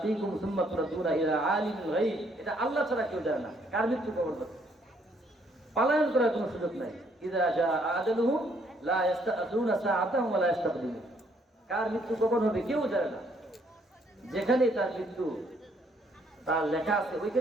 সুম্মা তুরাদ্দুনা ইলা আলিমিল গায়ব। এটা আল্লাহ ছাড়া কেউ জানে না কার মৃত্যু কখন হবে। পলায়ন করার কোনো সুযোগ নাই। ইযা জা আজালুহুম লা ইস্তাআযুনা সাআতাহুম ওয়া লা ইস্তাকদিমুন। কার মৃত্যু কখন হবে কেউ জানে না। যেখানে তার মৃত্যু তার লেখা আছে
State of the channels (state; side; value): normal; both; correlation 0.68